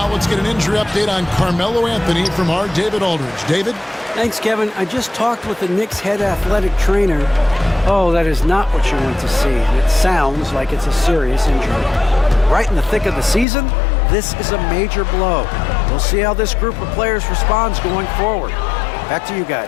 let's get an injury update on Carmelo Anthony from our David Aldridge. David? Thanks, Kevin. I just talked with the Knicks head athletic trainer. Oh, that is not what you want to see. And it sounds like it's a serious injury. Right in the thick of the season, this is a major blow. We'll see how this group of players responds going forward. Back to you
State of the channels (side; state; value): right; drops out; at 13.5 s